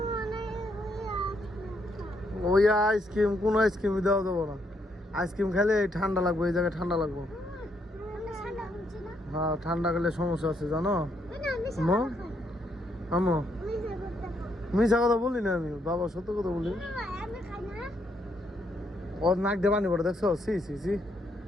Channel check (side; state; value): both; normal; correlation 0.75